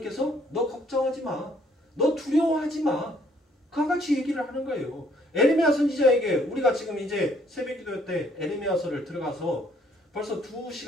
너 걱정하지 마. 너 두려워하지 마. 그와 같이 얘기를 하는 거예요. 에레미야 선지자에게 우리가 지금 이제 새벽기도 때 에레미야서를 들어가서 벌써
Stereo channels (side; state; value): both; normal; correlation 0.64